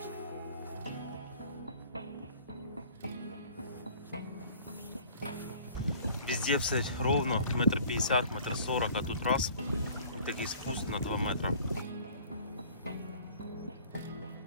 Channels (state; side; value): inverted; both; correlation -0.50